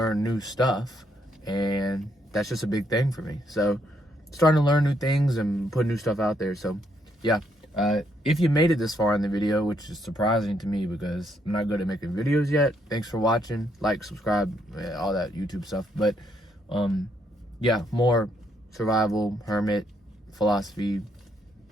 new stuff. And that's just a big thing for me. So starting to learn new things and put new stuff out there. So yeah, if you made it this far in the video, which is surprising to me because I'm not good at making videos yet, thanks for watching. Like, subscribe, all that YouTube stuff. But yeah, more survival, hermit, philosophy,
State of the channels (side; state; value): both; normal; correlation 0.74